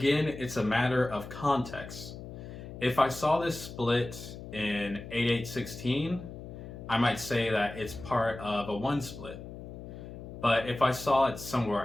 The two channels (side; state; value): left; noise; hum, 12 dB below the sound